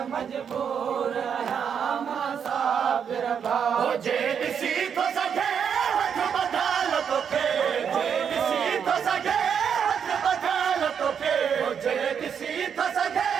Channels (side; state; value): left; quieter; 7.5 dB